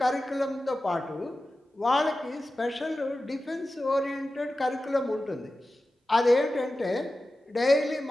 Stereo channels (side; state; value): both; normal; correlation 0.94